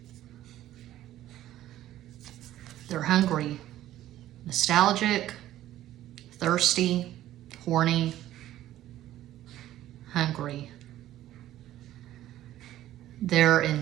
They're hungry, nostalgic, thirsty, horny, hungry. They're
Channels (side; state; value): left; quieter; 13.6 dB